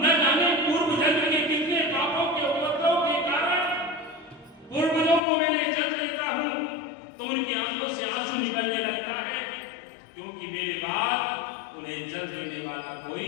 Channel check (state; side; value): drops out; right; at 5.2 s